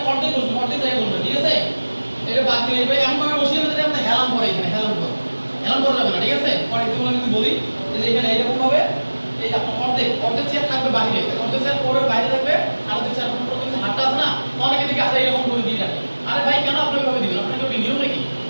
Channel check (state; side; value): inverted; both; correlation -1.00